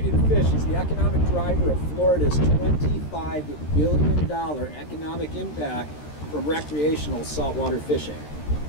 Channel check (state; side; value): late; right; 13 ms